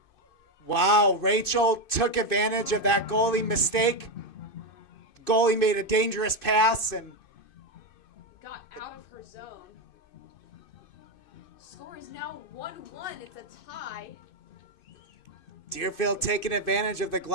Wow, Rachel took advantage of that goalie mistake. Goalie made a dangerous pass and Got out of her zone. Score is now 1-1. It's a tie. Deerfield taking advantage of the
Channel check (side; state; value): right; late; 2.5 ms